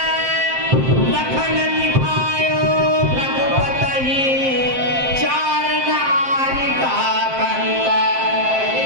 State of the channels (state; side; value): late; left; 7.6 ms